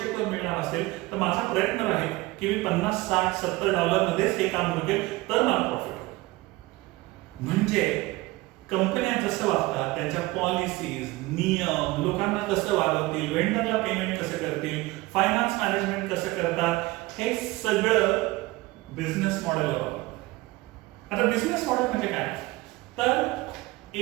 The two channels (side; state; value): left; quieter; 20.6 dB